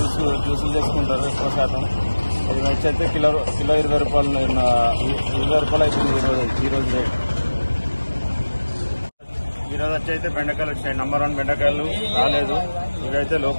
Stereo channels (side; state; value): both; inverted; correlation -1.00